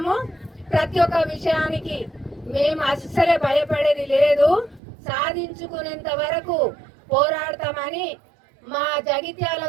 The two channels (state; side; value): drops out; left; at 4.8 s